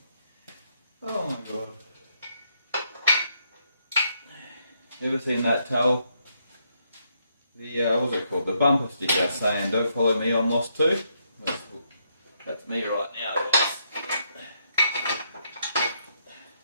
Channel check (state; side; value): inverted; both; correlation -0.76